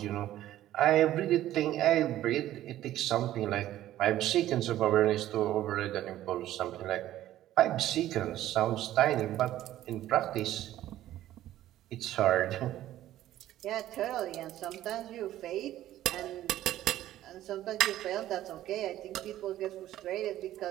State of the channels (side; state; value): left; quieter; 13.6 dB